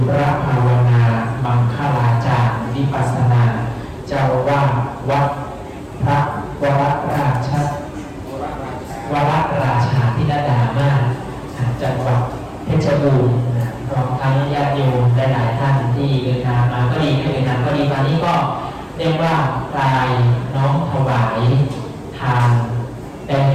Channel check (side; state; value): both; identical; correlation 1.00